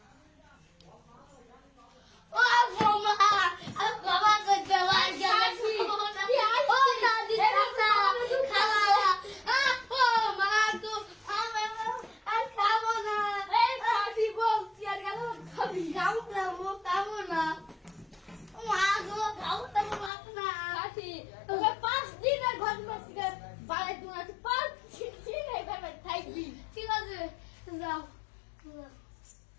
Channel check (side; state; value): right; drops out; at 20.1 s